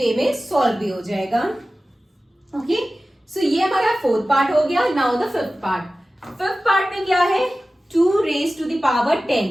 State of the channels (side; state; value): both; normal; correlation 0.96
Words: में सॉल्व भी हो जाएगा। ओके, सो ये हमारा 4th पार्ट हो गया। Now the 5th part. 5th part में क्या है? 2 रेज टू द पावर 10।